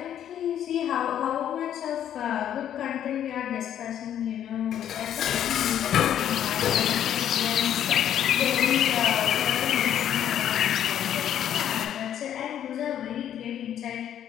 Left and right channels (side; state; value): right; quieter; 10.3 dB